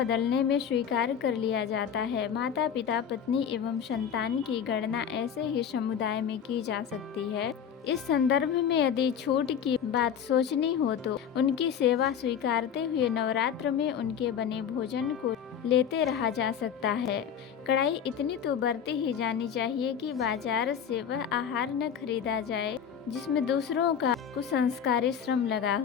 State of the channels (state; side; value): quieter; right; 8.0 dB